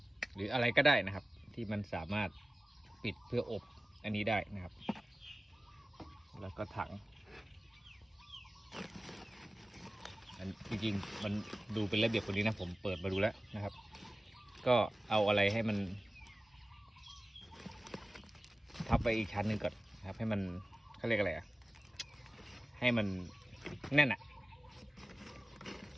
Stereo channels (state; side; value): normal; both; correlation 0.96